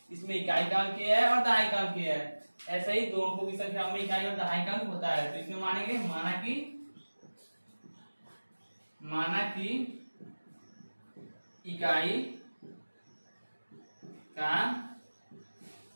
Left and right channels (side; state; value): both; inverted; correlation -1.00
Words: इसमें इकाई का अंक किया है और दहाई का अंक किया है, ऐसे ही दो अंकों की संख्याओं में इकाई और दहाई का अंक होता है। तो इसमें मानेंगे माना कि इकाई का